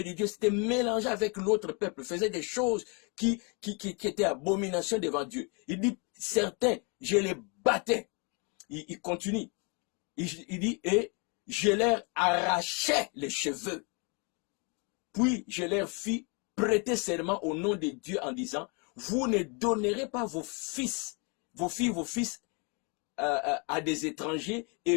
de Dieu, s'étaient mélangés avec l'autre peuple, faisaient des choses qui étaient abomination devant Dieu. Il dit, certains, je les battais. Il continue. Il dit, et je leur arrachais les cheveux. Puis je leur fis prêter serment au nom de Dieu en disant, vous ne donnerez pas vos fils, vos fils à des étrangers,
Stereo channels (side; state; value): right; quieter; 33.4 dB